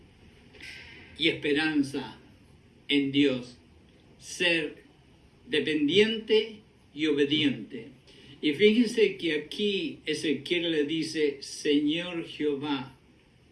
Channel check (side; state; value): both; identical; correlation 1.00